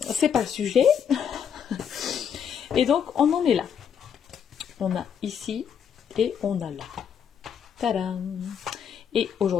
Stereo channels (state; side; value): quieter; right; 7.9 dB